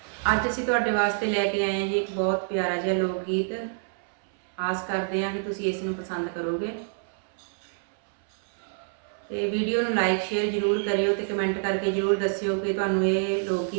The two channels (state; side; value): silent; left; 60 dB below the other